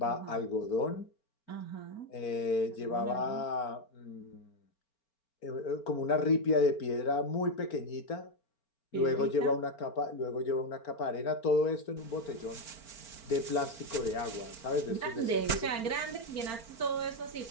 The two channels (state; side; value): late; right; 4.4 ms